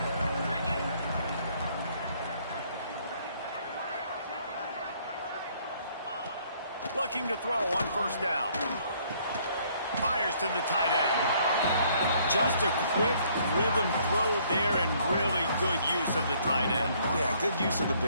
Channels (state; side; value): inverted; both; correlation -0.64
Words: Looking to throw on first down. Fires to the tight end. Just a quick rhythm throw there and really good use of the tight end. Yeah, good use of the